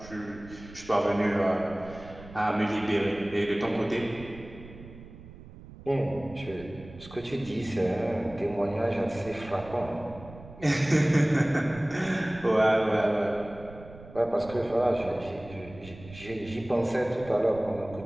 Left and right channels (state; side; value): noise; right; rumble, 17 dB below the sound